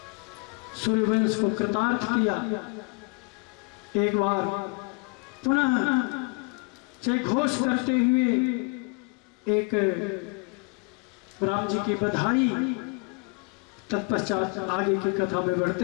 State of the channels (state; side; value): quieter; right; 32.4 dB